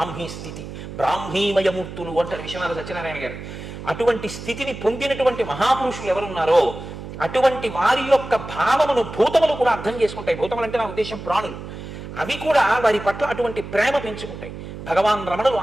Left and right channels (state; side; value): noise; right; hum, 11 dB below the sound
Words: స్థితి, బ్రాహ్మీమయమూర్తులు అంటారు విశ్వనాథ సత్యనారాయణ గారు. అటువంటి స్థితిని పొందినటువంటి మహాపురుషులు ఎవరున్నారో అటువంటి వారి యొక్క భావమును భూతములు కూడా అర్థం చేసుకుంటాయి. భూతములు అంటే నా ఉద్దేశం ప్రాణులు. అవి కూడా వారి పట్ల అటువంటి ప్రేమ పెంచుకుంటాయి. భగవాన్ రమణులు